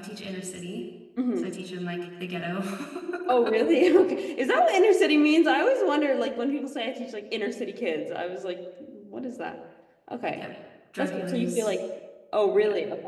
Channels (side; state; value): both; identical; correlation 1.00